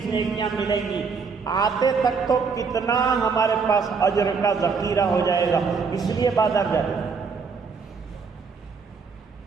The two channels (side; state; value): left; quieter; 5.3 dB